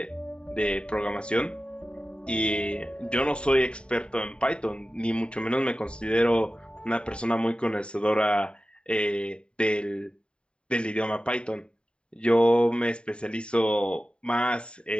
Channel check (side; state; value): right; late; 0.052 ms